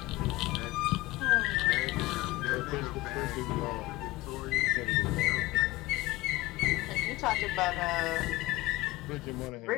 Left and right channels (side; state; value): right; quieter; 18.9 dB